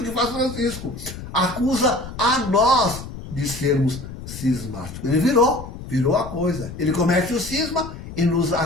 que faz Francisco. Acusa a nós de sermos cismáticos. Ele virou a coisa. Ele comete o cisma e nos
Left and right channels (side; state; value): left; noise; rumble, 11 dB below the sound